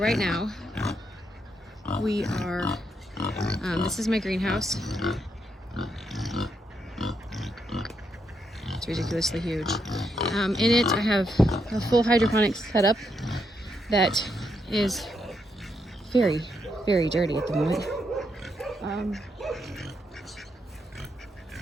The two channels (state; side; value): normal; both; correlation 0.79